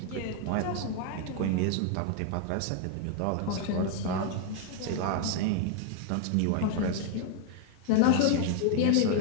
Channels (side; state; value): both; different; correlation 0.00